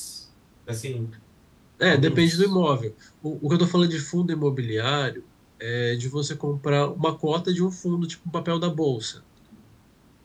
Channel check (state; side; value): identical; both; correlation 1.00